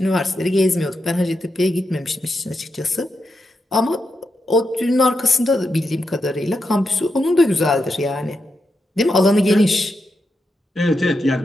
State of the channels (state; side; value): normal; both; correlation 0.86